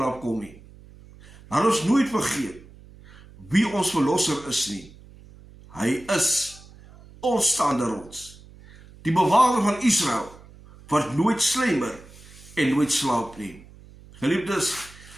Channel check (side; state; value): right; noise; hum, 22 dB below the sound